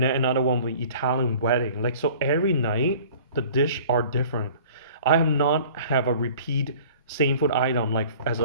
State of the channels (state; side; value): inverted; both; correlation -0.48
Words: then another one will be Italian wedding. Like so every night the dish are different. I have not have a repeat same food item like as